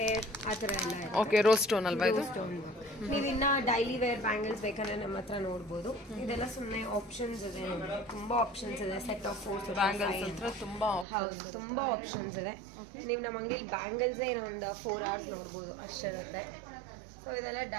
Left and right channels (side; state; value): left; drops out; at 11.1 s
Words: ಆ ಥರ ಎಲ್ಲ ಇದೆ. ಓಕೆ. ರೋಸ್ ಸ್ಟೋನ್ ಅಲ್ವಾ ಇದು? ಸ್ಟೋನ್. ನೀವು ಇನ್ನ ಡೈಲಿ ವೇರ್ ಬ್ಯಾಂಗಲ್ಸ್ ಬೇಕಂದ್ರೆ ನಮ್ಮ ಹತ್ರ ನೋಡ್ಬೋದು. ಇದೆಲ್ಲ ಸುಮ್ಮನೆ ಆಪ್ಷನ್ಸ್ ಇದೆ, ತುಂಬಾ ಆಪ್ಷನ್ಸ್ ಇದೆ. ಸೆಟ್ ಆಫ್ 4 ಬ್ಯಾಂಗಲ್ಸ್ ಹತ್ರ ತುಂಬಾ ಆಪ್ಷನ್ಸ್ ಇದೆ. ನೀವು ನಮ್ಮ ಅಂಗಡಿಯಲ್ಲಿ ಬ್ಯಾಂಗಲ್ಸೇ ಇನ್ನೊಂದು 4 hours ನೋಡ್ಬೋದು ಅಷ್ಟಿರುತ್ತೆ. ಸೊ ಇದೆಲ್ಲ